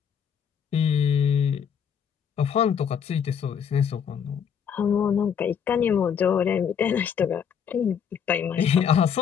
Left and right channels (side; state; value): right; quieter; 7.6 dB